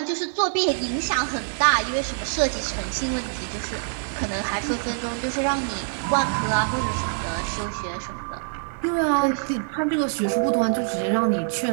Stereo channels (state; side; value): silent; left; digital silence